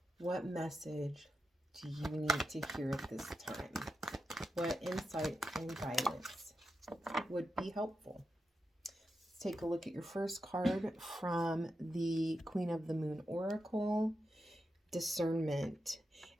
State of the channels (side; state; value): both; normal; correlation 0.88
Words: What message do you need to hear at this time? What insight and guidance would be helpful? Let's take a look at your first card from the Queen of the Moon Oracle, Discernment.